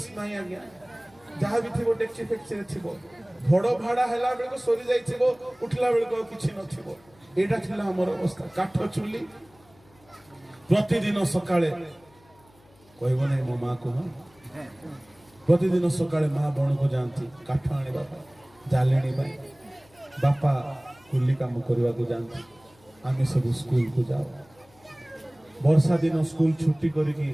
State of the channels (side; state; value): left; noise; hum, 30 dB below the sound